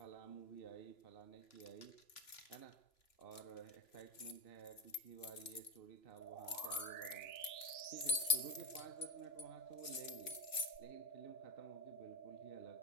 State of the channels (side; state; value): right; late; 2.9 ms